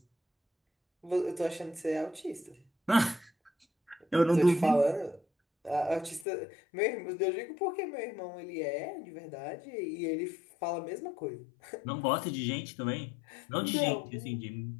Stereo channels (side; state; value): right; drops out; at 6.2 s